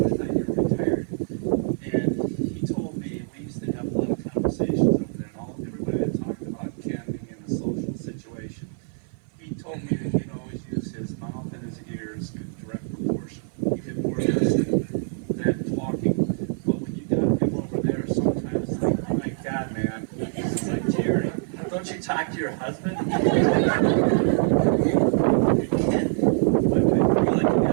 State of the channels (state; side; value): silent; left; 56 dB below the other